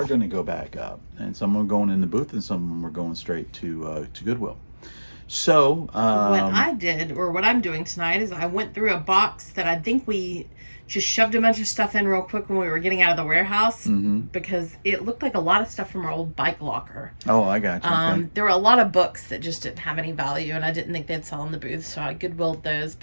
going to go back up, and some are going in the booth, and some of them are going straight to Goodwill. So what I did, or what I'm doing tonight, is I went through a box that I think we just shoved a bunch of stuff in real quick when we were getting out of the warehouse because it looked like a lot of stuff from our old bike locker. Oh, I got you. Okay. There were a lot of books that just didn't have any value, and I didn't think they'd sell in the booth, so I Goodwilled those.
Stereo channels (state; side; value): inverted; both; correlation -1.00